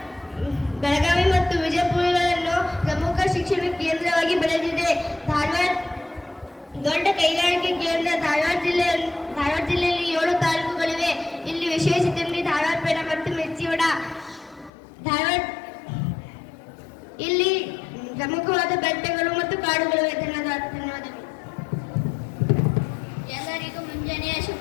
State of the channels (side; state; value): right; drops out; at 14.7 s